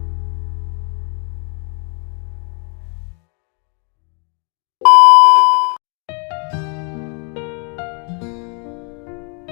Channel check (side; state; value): right; quieter; 36.9 dB